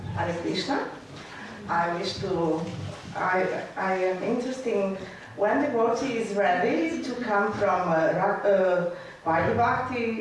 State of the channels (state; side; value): identical; both; correlation 1.00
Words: Hare Krishna. I am interested when devotee is ready to come from Vaidhi